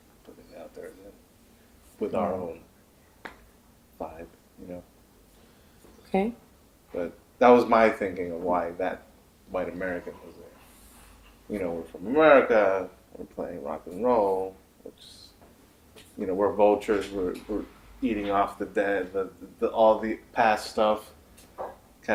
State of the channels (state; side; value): identical; both; correlation 1.00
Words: it out there again with our own vibe, you know. Okay. But that was my thinking of why that white American was there. You know, we're from America. We're playing rock and roll, which, you know, we're vultures. We're eating off the dead, the all the past stuff,